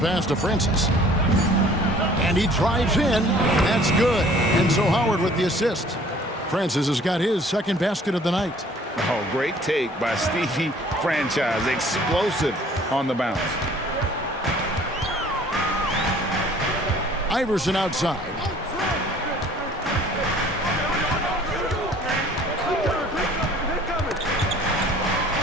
to Francis. And he drives in. That's good. And so Howard with the assist. Francis has got his second basket of the night. Oh, great take by Stevie Franchise. Explosive on the bounce. Iverson outside.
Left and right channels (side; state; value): both; normal; correlation 0.53